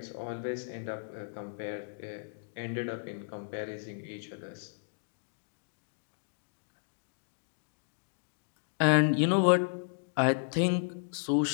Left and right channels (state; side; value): silent; right; digital silence